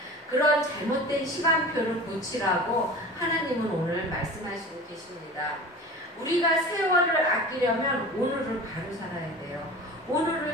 그런 잘못된 시간표를 고치라고 하나님은 오늘 말씀하시고 계십니다. 우리가 세월을 아끼려면 오늘을 바로 살아야 돼요.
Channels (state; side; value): normal; both; correlation 0.36